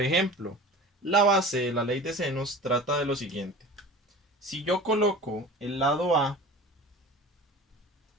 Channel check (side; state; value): both; normal; correlation 0.38